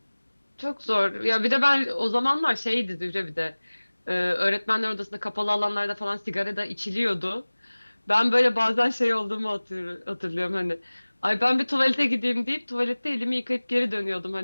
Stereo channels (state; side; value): inverted; both; correlation -1.00